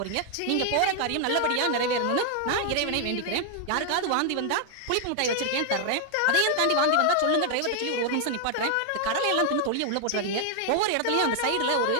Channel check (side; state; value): both; different; correlation 0.00